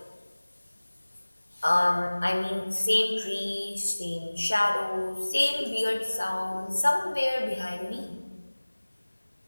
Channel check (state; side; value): inverted; both; correlation -1.00